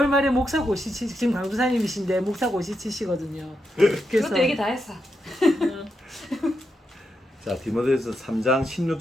말에 목사고시 지금 강도사님이신데 목사고시 치시거든요. 그래서 그것도 얘기 다 했어. 자, 디모데전서 3장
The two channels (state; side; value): normal; both; correlation 0.84